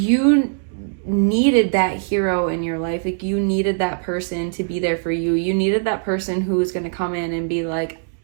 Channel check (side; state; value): left; silent; digital silence